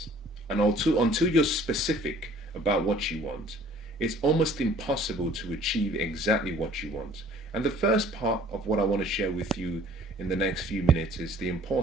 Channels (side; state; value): both; normal; correlation 0.53